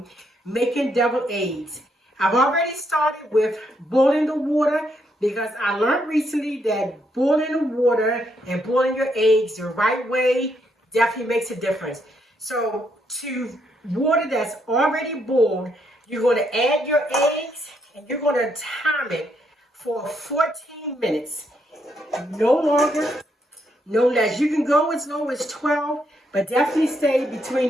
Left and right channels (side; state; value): both; normal; correlation 0.76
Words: making deviled eggs. I've already started with boiling the water because I learned recently that boiling the water and boiling your eggs the right way definitely makes a difference. So to water that's already boiled, you're going to add your eggs and you're going to time it for 14 minutes. No longer, no less. You can go as low as 12, but definitely stay